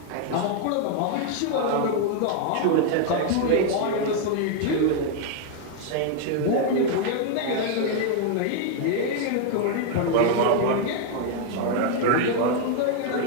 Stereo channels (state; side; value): different; both; correlation 0.00